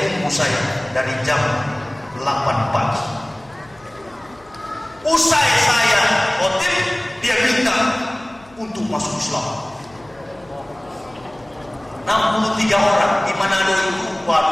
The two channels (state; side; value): noise; left; hum, 27 dB below the sound